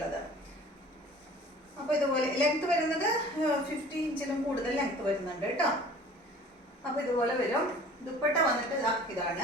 അപ്പൊ ഇതുപോലെ ലെങ്ത് വരുന്നത് 50 ഇഞ്ചിലും കൂടുതൽ ലെങ്ത് വരുന്നുണ്ട് കേട്ടോ. അപ്പൊ ഇതുപോലെ വരും. ദുപ്പട്ട വന്നിട്ട്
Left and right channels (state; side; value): normal; both; correlation 0.47